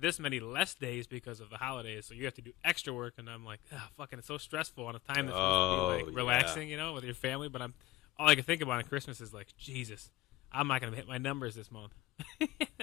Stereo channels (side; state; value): right; quieter; 16.3 dB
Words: many less days because of the holidays, so you have to do extra work, and I'm like, fucking, it's so stressful on a time that's supposed to be like relaxing, with your family. But all I can think about on Christmas is like, Jesus, I'm not going to hit my numbers this month.